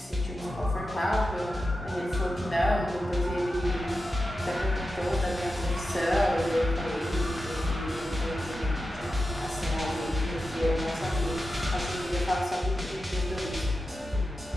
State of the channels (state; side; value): normal; both; correlation 0.91